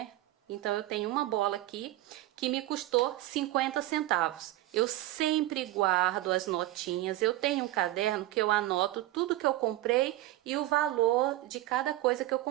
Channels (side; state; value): left; quieter; 16.0 dB